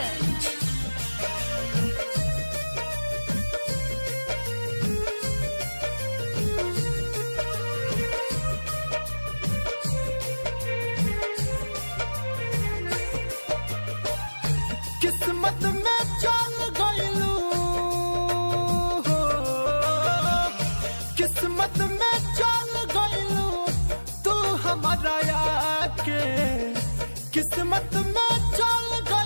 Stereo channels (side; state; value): both; inverted; correlation -1.00